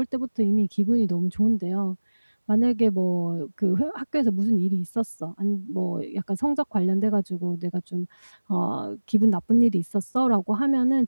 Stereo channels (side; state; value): both; inverted; correlation -1.00